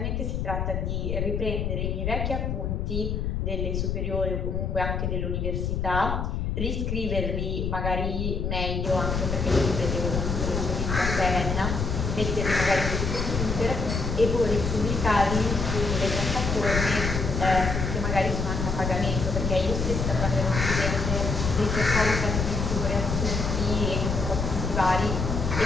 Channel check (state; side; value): noise; left; rumble, 1 dB below the sound